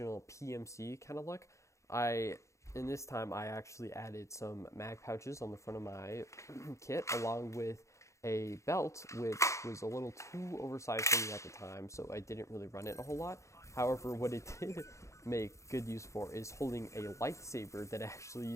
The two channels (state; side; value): late; right; 0.15 ms